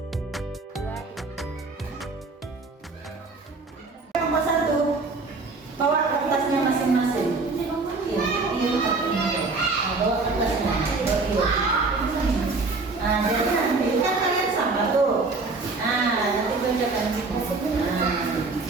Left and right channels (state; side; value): quieter; left; 3.8 dB